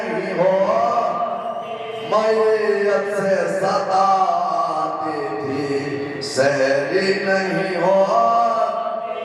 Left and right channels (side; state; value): both; identical; correlation 1.00